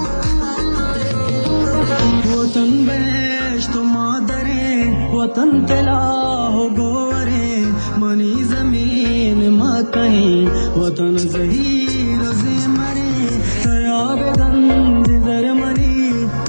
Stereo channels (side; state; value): both; inverted; correlation -1.00